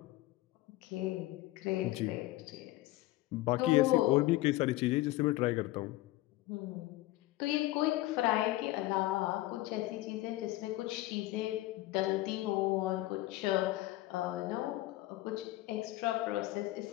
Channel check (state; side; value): quieter; right; 17.7 dB